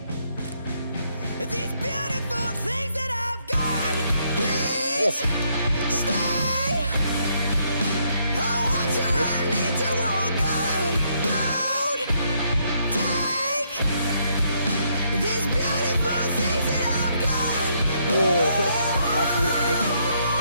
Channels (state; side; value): inverted; both; correlation -0.73